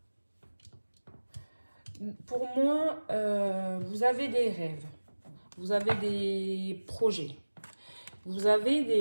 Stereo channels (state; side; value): inverted; both; correlation -1.00